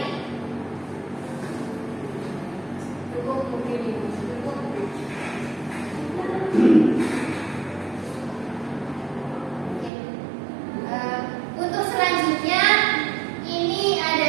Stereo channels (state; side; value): drops out; left; at 9.9 s